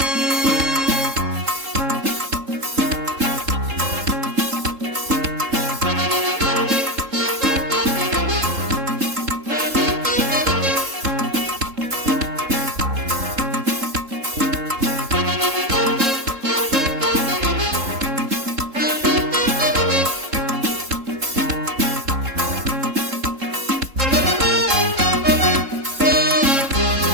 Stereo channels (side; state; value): left; late; 3.7 ms